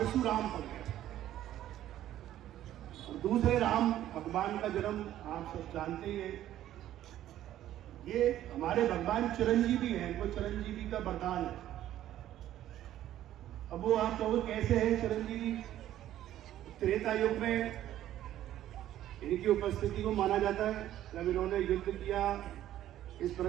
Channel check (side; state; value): left; quieter; 12.7 dB